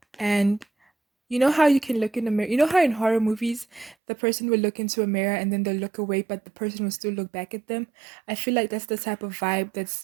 And you know how you can look in the mirror, you know how in horror movies the person will look into a mirror and then they'll look away but the person will still look back at them. I feel like that's the type of vibe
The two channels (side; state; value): left; drops out; at 4.0 s